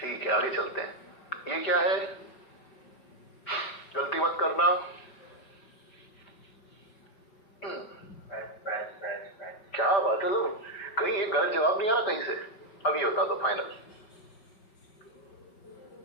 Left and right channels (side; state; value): right; late; 5.3 ms